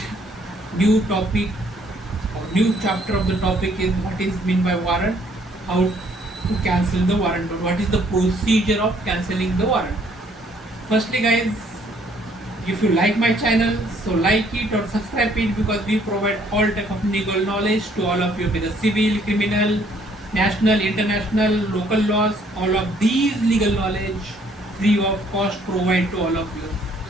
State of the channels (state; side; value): normal; both; correlation 0.63